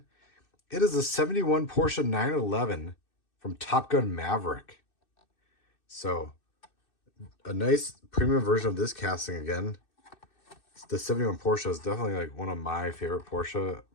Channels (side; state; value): right; late; 2.6 ms